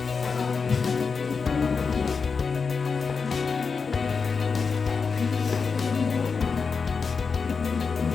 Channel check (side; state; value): right; quieter; 5.2 dB